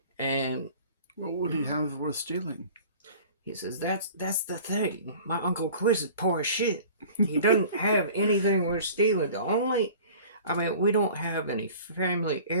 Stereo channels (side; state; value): both; inverted; correlation -0.44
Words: And What would he have worth stealing? he says that's the thing. My Uncle Quiz is poor as shit. He doesn't have anything worth stealing. We don't have any family